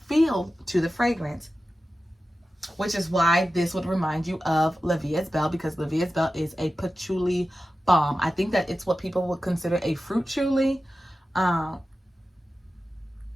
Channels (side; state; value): both; normal; correlation 0.94